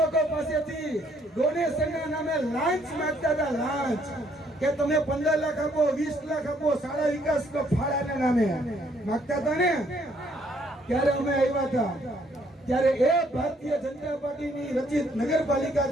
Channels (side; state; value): both; normal; correlation 0.67